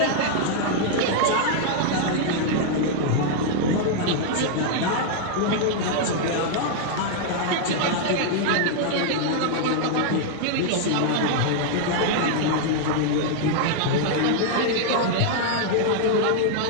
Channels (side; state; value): both; different; correlation -0.01